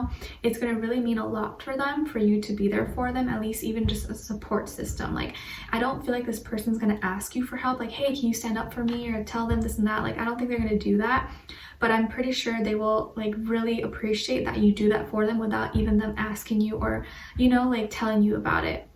it's going to really mean a lot for them for you to be there for them, at least even just a support system. Like, I don't feel like this person's going to ask you for help, like, hey, can you stand up for me, or tell them this and that. Like, I don't think they're going to do that, but I'm pretty sure they will like really appreciate that you do that for them without even them asking you, or, you know, like telling you about it.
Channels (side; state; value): both; identical; correlation 1.00